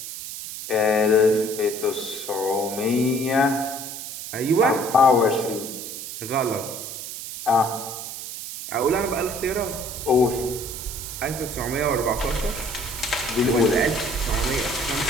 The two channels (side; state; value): right; noise; hiss, 9 dB below the sound